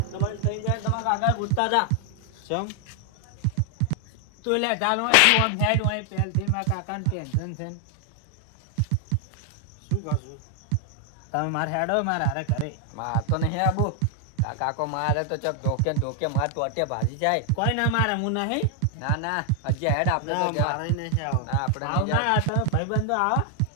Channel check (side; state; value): both; different; correlation 0.00